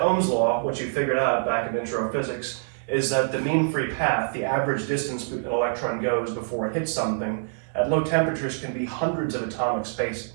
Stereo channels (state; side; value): silent; left; digital silence